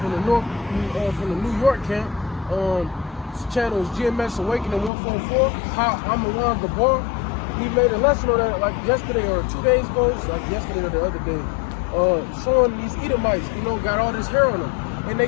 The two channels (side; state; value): right; drops out; at 4.9 s